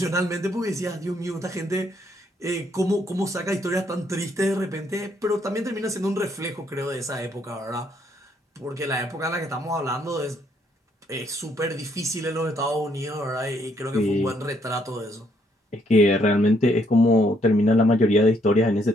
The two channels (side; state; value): both; normal; correlation 0.71